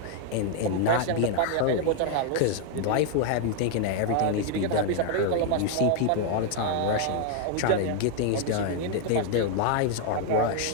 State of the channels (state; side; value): different; both; correlation 0.00